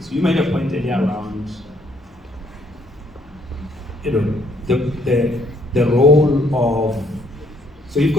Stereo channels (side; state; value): both; normal; correlation 0.66